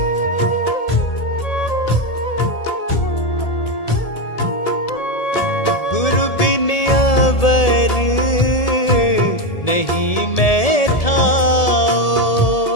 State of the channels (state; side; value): late; right; 1.7 ms